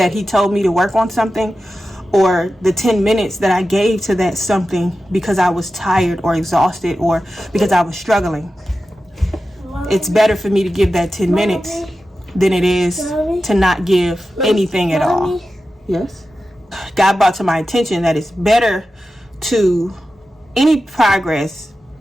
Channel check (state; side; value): normal; both; correlation 0.93